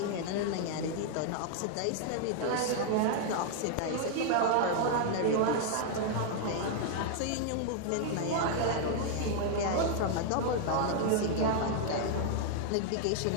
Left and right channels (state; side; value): different; both; correlation -0.01